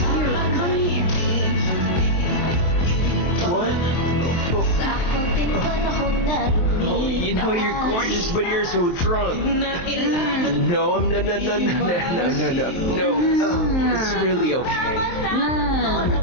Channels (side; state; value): right; late; 23 ms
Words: You, come here. What? Sa konting panahon na Oh, you know you're gorgeous, but you're so drunk. No, I'm no. It's really okay. No.